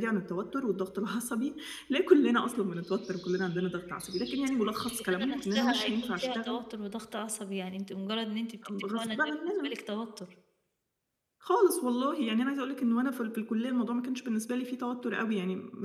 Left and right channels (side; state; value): both; identical; correlation 1.00